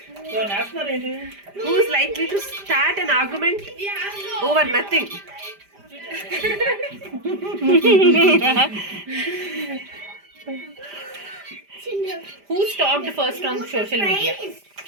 So national ఏంటి? Who's likely to start an argument over nothing? Who stalked first on social media?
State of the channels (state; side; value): late; left; 5.0 ms